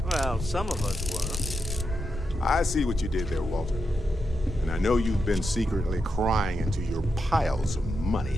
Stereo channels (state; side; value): normal; both; correlation 0.86